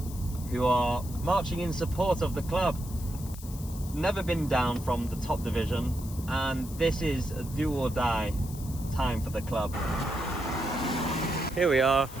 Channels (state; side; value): noise; left; hiss, 16 dB below the sound